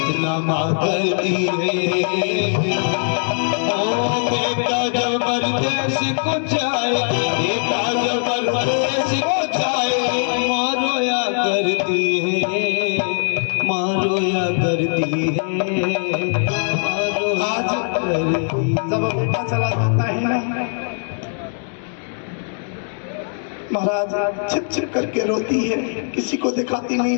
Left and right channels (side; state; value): right; silent; 65 dB below the other